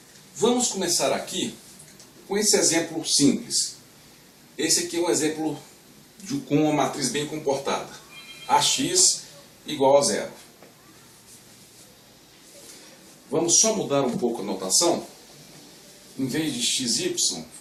vamos começar aqui com esse exemplo simples. Esse aqui é um exemplo com uma matriz bem comportada. Ax igual a zero. Vamos só mudar um pouco a notação. Em vez de xy,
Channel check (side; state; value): both; identical; correlation 1.00